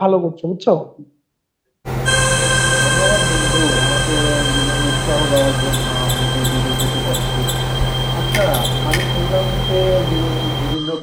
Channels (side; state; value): both; identical; correlation 1.00